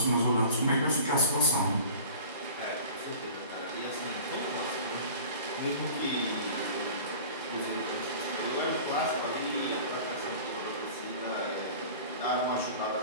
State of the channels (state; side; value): inverted; both; correlation -0.40